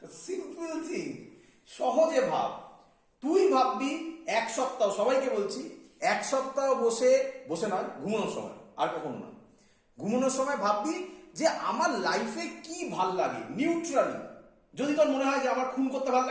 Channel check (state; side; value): identical; both; correlation 1.00